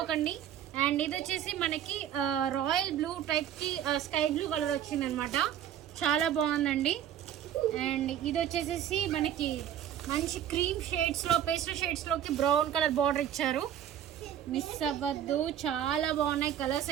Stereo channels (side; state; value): left; quieter; 10.3 dB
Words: అండ్ ఇది వచ్చేసి మనకి రాయల్ బ్లూ టైప్కి స్కై బ్లూ కలర్ వచ్చింది అనమాట. చాలా బాగుందండి. అండ్ ఇది వచ్చేసి మనకి మంచి క్రీమ్ షేడ్స్లో, పేస్టల్ షేడ్స్లోకి బ్రౌన్ కలర్ బార్డర్ ఇచ్చారు. మిస్ అవ్వద్దు, చాలా బాగున్నాయి కలర్స్